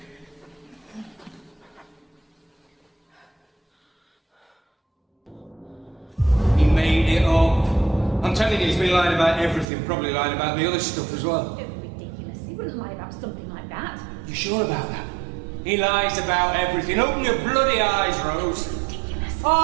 I'm telling you, he's been lying about everything, probably lying about the other stuff as well. Ridiculous. He wouldn't lie about something like that. You sure about that? He lies about everything. Open your bloody eyes, Rose. Ridiculous.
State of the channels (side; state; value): left; drops out; at 9.7 s